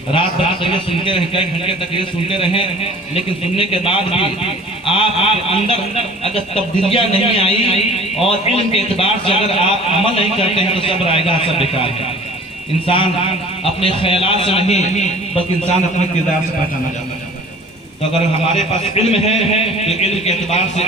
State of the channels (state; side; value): normal; both; correlation 0.47